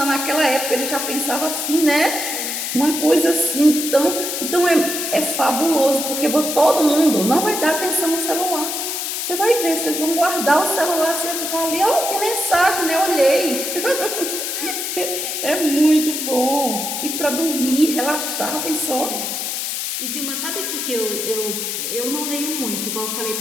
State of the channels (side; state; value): left; noise; hiss, 3 dB below the sound